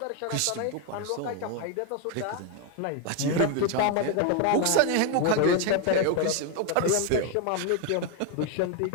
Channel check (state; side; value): different; both; correlation 0.01